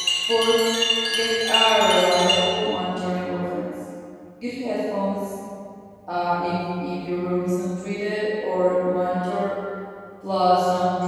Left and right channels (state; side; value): identical; both; correlation 1.00